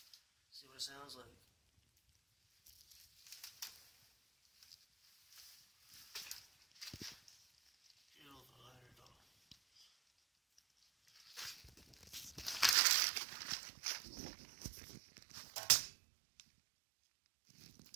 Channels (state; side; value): drops out; left; at 12.8 s